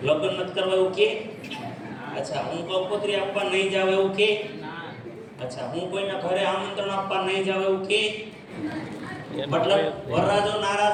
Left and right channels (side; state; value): both; identical; correlation 1.00